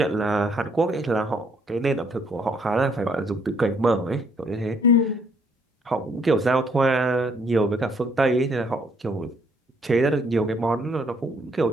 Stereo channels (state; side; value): normal; both; correlation 0.66